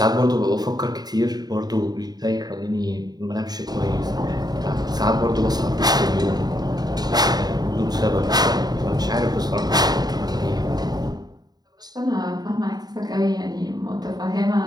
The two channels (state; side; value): late; left; 0.19 ms